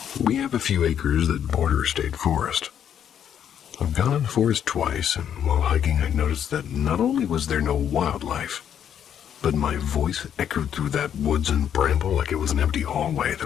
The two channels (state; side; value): quieter; right; 9.1 dB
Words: We have a few acres that border a state forest. I've gone in the forest twice, and while hiking I noticed that not only was there no wildlife, but my voice echoed through that woods and bramble like it was an empty hallway